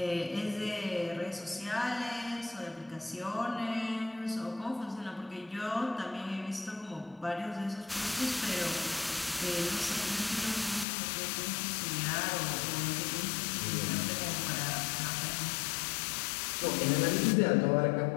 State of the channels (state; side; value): drops out; right; at 10.9 s